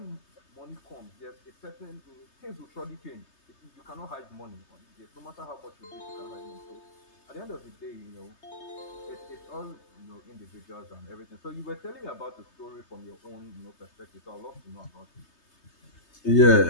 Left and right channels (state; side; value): late; right; 3.3 ms